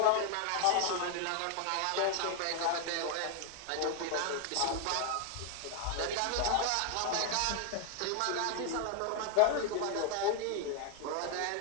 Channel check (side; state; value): both; different; correlation 0.01